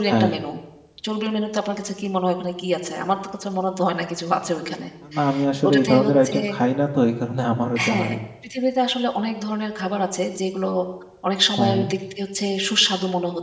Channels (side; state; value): both; identical; correlation 1.00